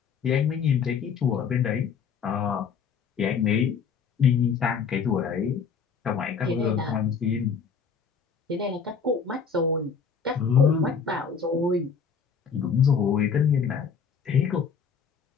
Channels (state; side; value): quieter; right; 6.3 dB